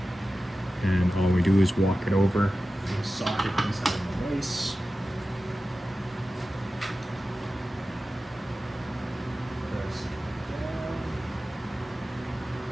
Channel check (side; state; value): both; normal; correlation 0.94